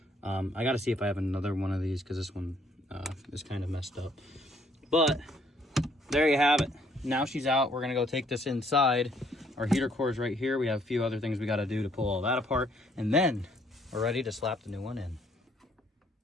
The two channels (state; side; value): normal; both; correlation 0.65